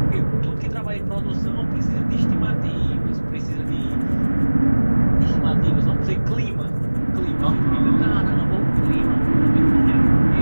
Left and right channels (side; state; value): both; inverted; correlation -1.00